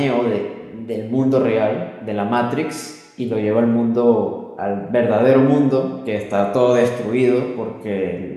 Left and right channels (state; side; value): identical; both; correlation 1.00